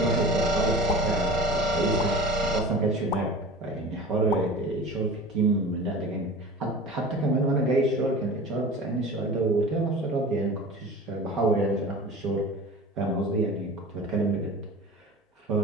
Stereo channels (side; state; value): both; normal; correlation 0.37